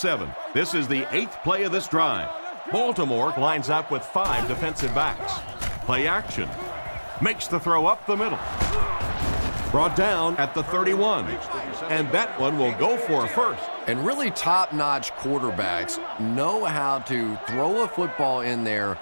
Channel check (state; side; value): inverted; both; correlation -1.00